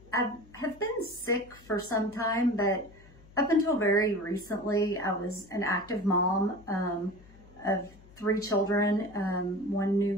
have been sick for some time, but up until very recently, I was an active mom of 3 children, 1 new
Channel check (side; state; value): left; noise; hum, 24 dB below the sound